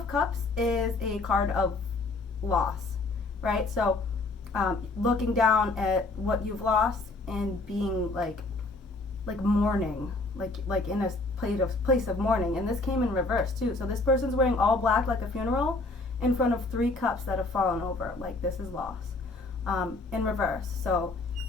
Cups is a card of loss, right? So looking down at what you've lost and being like mourning, like in a place of mourning. And this came in reverse too. So this person's wearing all black like a funeral in front of 3 cups that have fallen over. Like, this is loss in reverse. So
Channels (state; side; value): quieter; right; 3.3 dB